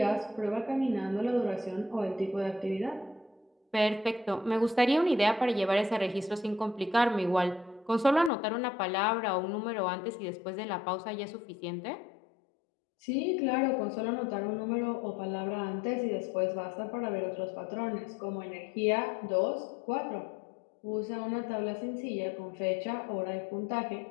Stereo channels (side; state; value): right; drops out; at 8.3 s